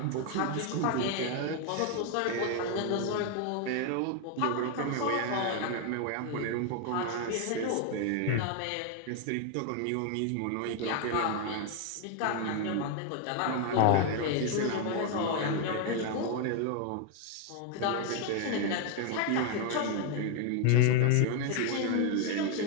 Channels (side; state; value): both; different; correlation 0.01